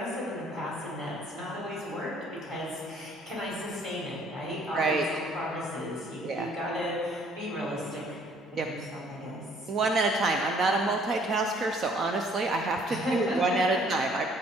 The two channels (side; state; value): both; normal; correlation 0.60